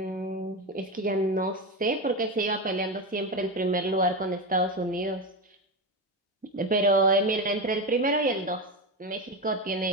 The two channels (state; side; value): normal; both; correlation 0.17